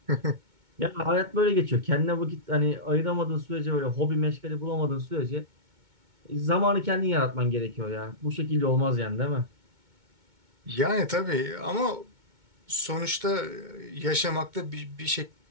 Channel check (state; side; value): late; left; 2.2 ms